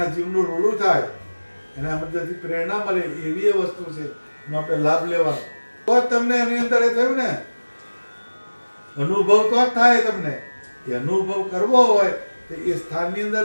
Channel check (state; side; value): inverted; both; correlation -1.00